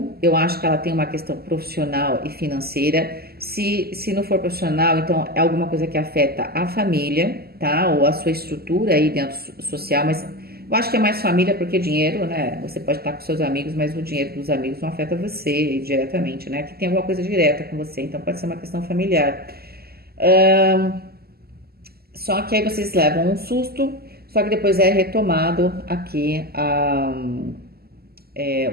Eu acho que ela tem uma questão profissional e financeira. Se não for profissional, então é alguma coisa que afeta a família, tá? Ou a sua estrutura aí dentro social, mas eu acho que é mais família porque dinheiro, né? Você pode estar com seus amigos, mas o dinheiro dos amigos não afeta você diretamente, né? Que tem alguma coisa direta com você, então pode ser uma questão familiar. Só que aí vocês levam um susto, só que depois é retomado aqui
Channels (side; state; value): left; late; 0.45 ms